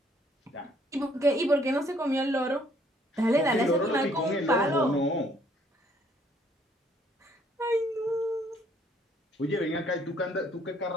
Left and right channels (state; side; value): normal; both; correlation 0.64